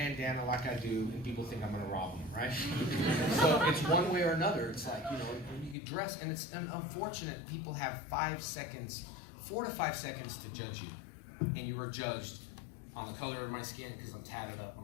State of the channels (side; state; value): right; drops out; at 5.8 s